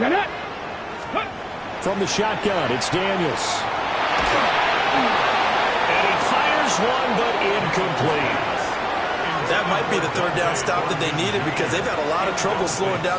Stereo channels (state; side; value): identical; both; correlation 1.00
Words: From the shotgun, it's Daniels. And he fires one, but incomplete. That might be the 3rd down stop that they needed because they've had a lot of trouble slowing